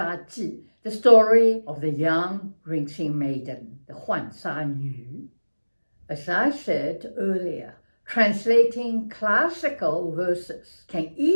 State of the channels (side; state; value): both; inverted; correlation -1.00